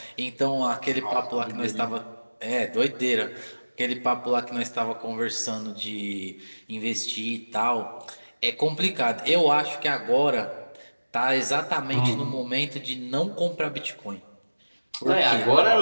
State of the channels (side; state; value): both; inverted; correlation -1.00